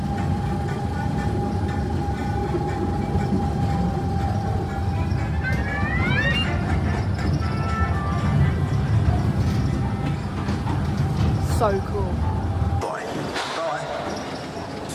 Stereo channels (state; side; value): identical; both; correlation 1.00